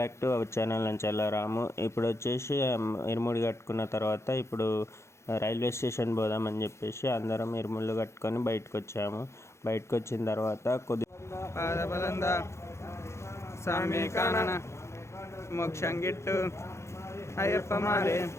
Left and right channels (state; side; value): late; right; 0.13 ms